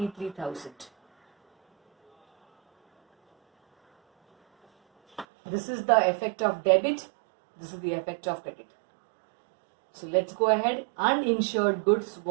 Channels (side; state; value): left; drops out; at 5.2 s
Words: This is the effect of debit, this is the effect of credit. So let's go ahead. Uninsured goods